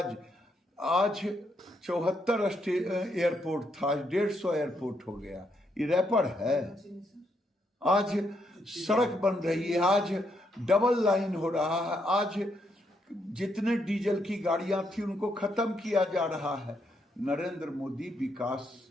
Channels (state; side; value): normal; both; correlation 0.77